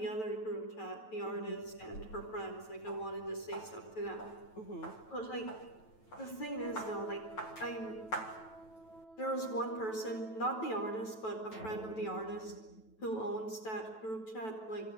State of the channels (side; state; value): right; late; 9.1 ms